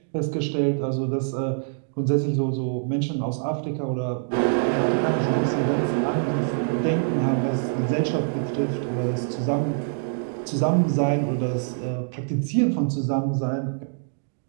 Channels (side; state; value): left; silent; digital silence